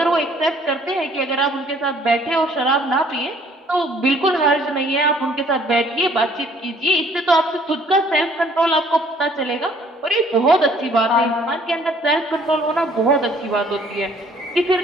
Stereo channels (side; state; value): both; normal; correlation 0.59